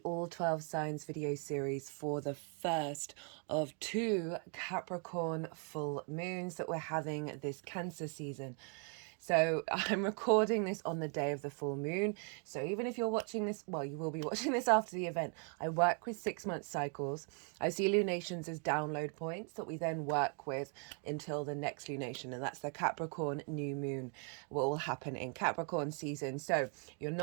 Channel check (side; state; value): left; quieter; 39.8 dB